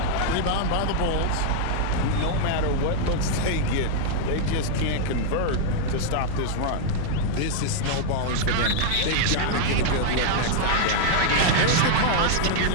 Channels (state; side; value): different; both; correlation 0.00